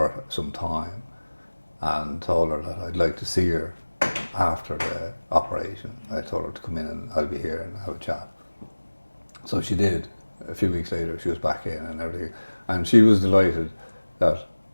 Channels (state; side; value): inverted; both; correlation -1.00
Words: some time and told her that I'd like to see her after the operation. I told her to come in and I'll be here and have a chat. So she did. A few weeks later she was back in and everything. And she was delighted that